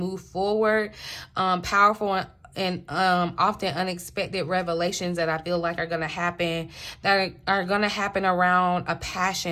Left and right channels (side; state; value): both; identical; correlation 1.00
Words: forward. Powerful and often unexpected revelations that I feel like are going to happen, that are going to happen around a